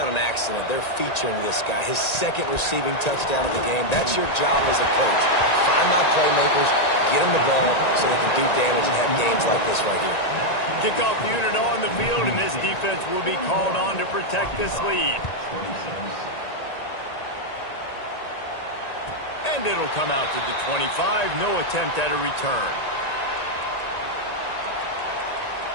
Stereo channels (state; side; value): late; right; 1.9 ms